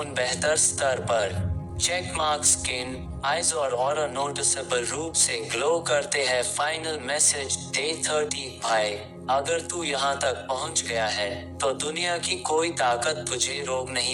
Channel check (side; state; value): both; identical; correlation 1.00